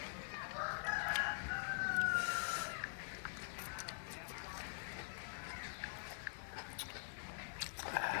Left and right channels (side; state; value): right; silent; digital silence